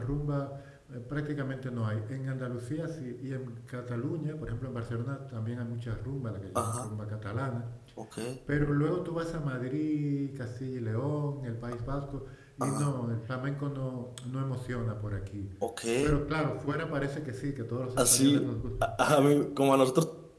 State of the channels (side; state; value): both; identical; correlation 1.00